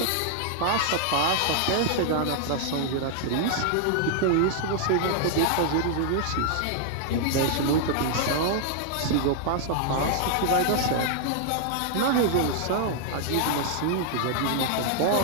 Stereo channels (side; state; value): both; different; correlation -0.01